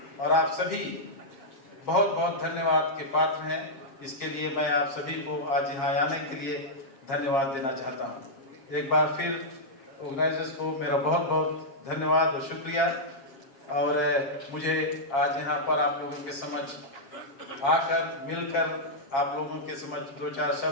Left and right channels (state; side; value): late; right; 7.4 ms